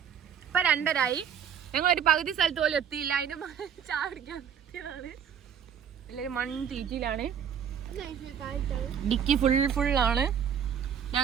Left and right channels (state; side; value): quieter; left; 8.2 dB